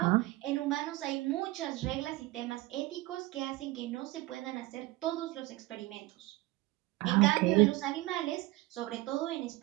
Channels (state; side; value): quieter; left; 19.2 dB